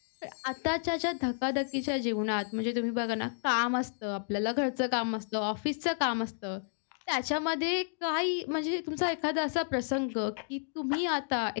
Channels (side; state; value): right; silent; digital silence